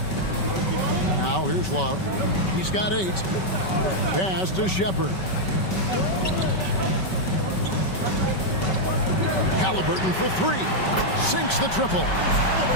Now here's Love. He's got 8. Pass to Shepard. Halliburton for 3. Sinks the triple.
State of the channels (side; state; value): right; late; 5.3 ms